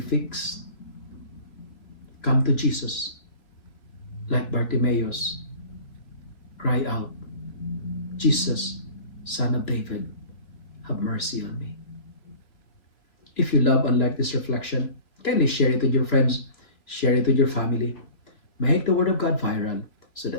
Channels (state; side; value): late; right; 3.1 ms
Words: Come to Jesus. Like Bartimaeus, cry out, Jesus, Son of David, have mercy on me. If you love and like this reflection, kindly share it with your friends, share it with your family. Make the Word of God viral so